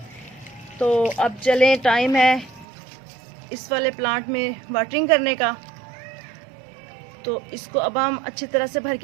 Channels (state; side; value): drops out; left; at 2.7 s